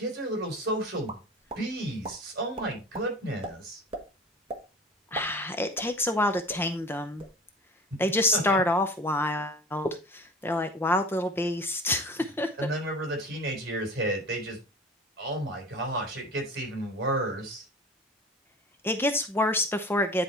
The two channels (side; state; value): both; normal; correlation 0.38